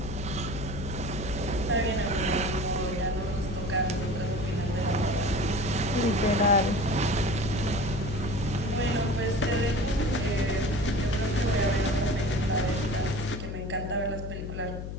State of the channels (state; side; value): noise; left; hum, 7 dB below the sound